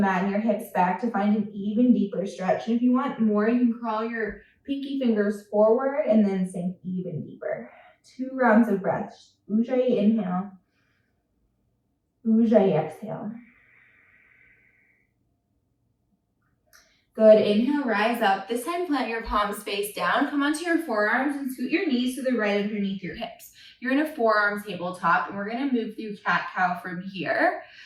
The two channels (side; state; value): both; identical; correlation 1.00